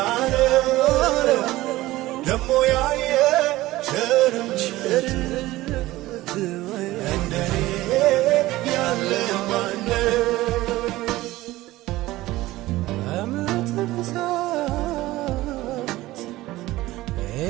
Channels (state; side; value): quieter; left; 17.5 dB